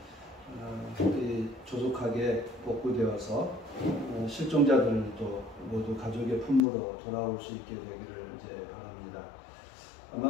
조속하게 복구되어서 실종자들도 모두 가족의 품으로 돌아올 수 있게 되기를 이제 바랍니다.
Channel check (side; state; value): right; drops out; at 6.6 s